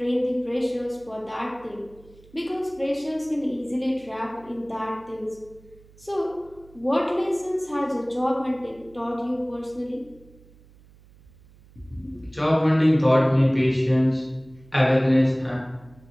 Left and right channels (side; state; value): right; noise; hum, 26 dB below the sound